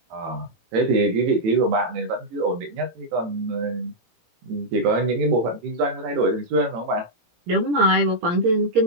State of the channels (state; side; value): late; left; 17 ms